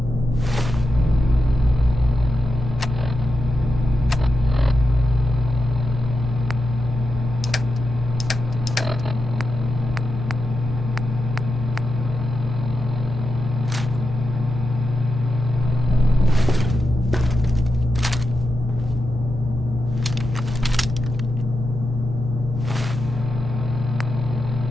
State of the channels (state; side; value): normal; both; correlation 0.89